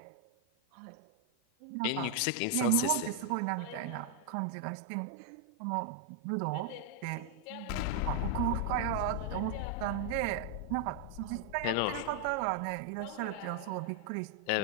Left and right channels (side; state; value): both; different; correlation 0.00